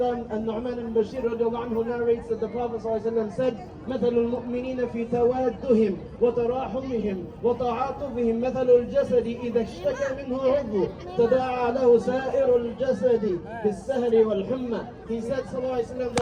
An-Nu'man al-Bashir radiallahu anhu narrates that the Prophet ﷺ said, مثل المؤمنين في توادهم وتراحمهم وتعاطفهم مثل الجسد إذا اشتكى منه عضو تداعى له سائر الجسد بالسهر والحمى. He said ﷺ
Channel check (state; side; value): identical; both; correlation 1.00